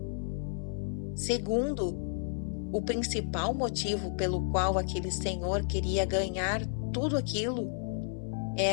Segundo, o principal motivo pelo qual aquele senhor queria ganhar tudo aquilo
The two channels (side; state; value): right; silent; 56 dB below the other